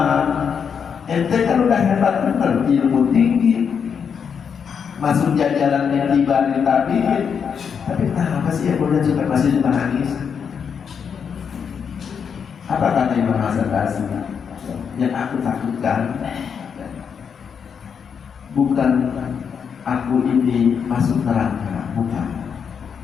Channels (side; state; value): right; quieter; 6.9 dB